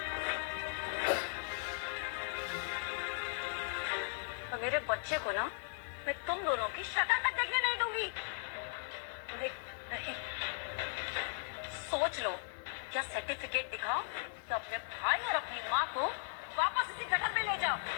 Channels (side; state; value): right; silent; digital silence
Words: और मेरे बच्चे को ना मैं तुम दोनों की शक्ल तक देखने नहीं दूंगी। नहीं नहीं, सोच लो, या सर्टिफिकेट दिखाओ तो अपने भाई और अपनी माँ को वापस इसी गटर में ले जाओ।